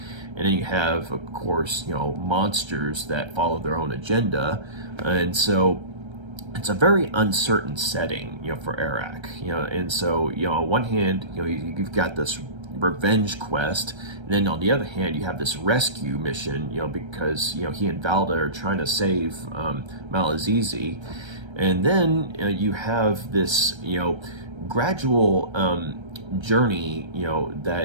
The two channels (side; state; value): left; late; 1.3 ms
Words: And then you have, of course, monsters that follow their own agenda. And so it's a very uncertain setting, for Arak. And so on one hand, you've got this revenge quest. And then on the other hand, you have this rescue mission, because, he and Valda are trying to save Malazizi. And then you have this, gradual journey,